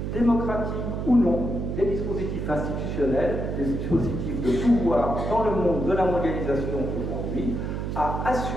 démocratiques ou non, des dispositifs institutionnels, des dispositifs de pouvoir dans le monde de la mondialisation aujourd'hui, à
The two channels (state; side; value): noise; right; hum, 3 dB below the sound